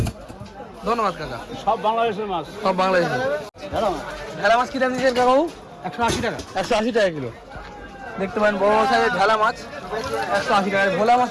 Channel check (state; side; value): identical; both; correlation 1.00